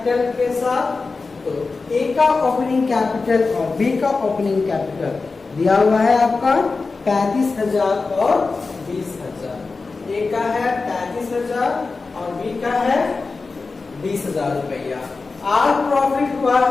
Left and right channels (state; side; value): quieter; right; 4.1 dB